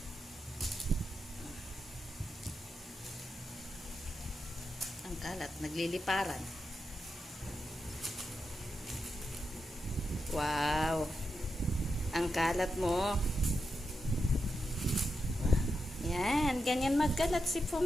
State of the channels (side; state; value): both; normal; correlation 0.87